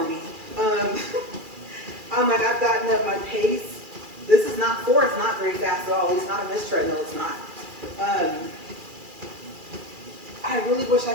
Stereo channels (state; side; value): late; left; 2.4 ms